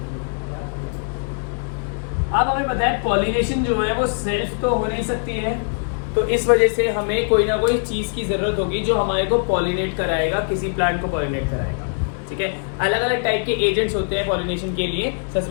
अब हमें पता है पॉलिनेशन जो है वो सेल्फ तो हो नहीं सकती है, तो इस वजह से हमें कोई ना कोई चीज़ की ज़रूरत होगी जो हमारे को पॉलिनेट कराएगा, किसी प्लांट को पॉलिनेट कराएगा। ठीक है, अलग अलग टाइप के एजेंट्स होते हैं पॉलिनेशन के लिए। सबसे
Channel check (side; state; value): right; silent; digital silence